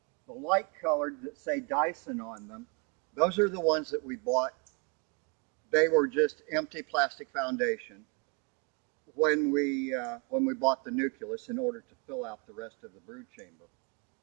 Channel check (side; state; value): left; quieter; 33.6 dB